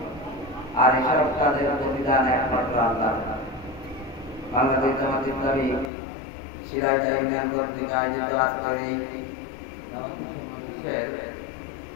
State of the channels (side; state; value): right; drops out; at 5.9 s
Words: আর এসব কাজের প্রতিদান একমাত্র আল্লাহ। বাংলাদেশ জামাত ইসলামী সিরাজগঞ্জ ইউনিয়ন কর্তৃক আয়োজিত আজকের এই